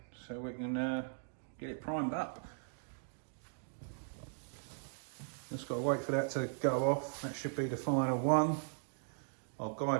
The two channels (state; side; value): silent; left; digital silence